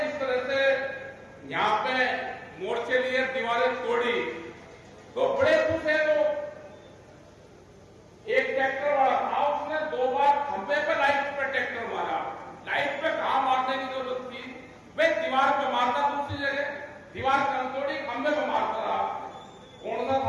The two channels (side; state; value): both; identical; correlation 1.00